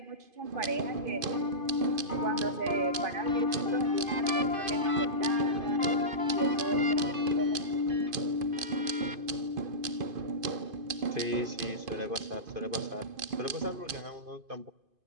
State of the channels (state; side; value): late; left; 2.5 ms